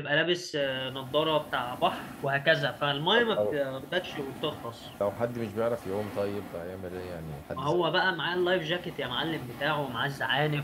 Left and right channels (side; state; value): both; identical; correlation 1.00